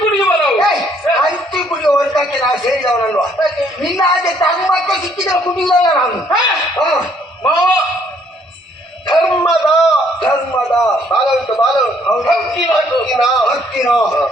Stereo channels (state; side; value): normal; both; correlation 0.65